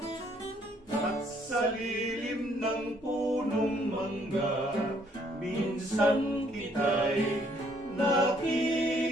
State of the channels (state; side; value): normal; both; correlation 0.66